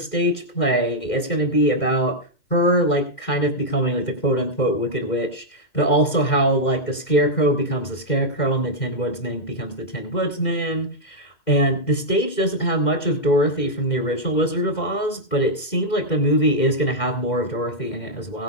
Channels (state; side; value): late; right; 2.1 ms